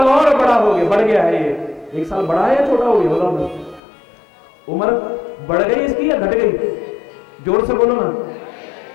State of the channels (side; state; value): right; drops out; at 3.8 s